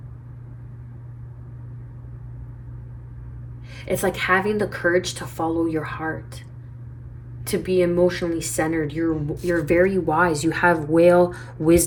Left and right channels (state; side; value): identical; both; correlation 1.00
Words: It's like having the courage to follow your heart, to be emotionally centered. You're very wise. You have whale